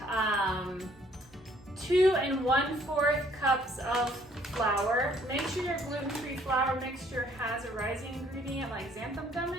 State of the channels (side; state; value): both; normal; correlation 0.62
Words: 2 1/4 cups of flour. Make sure your gluten-free flour mixture has a rising ingredient like xanthan gum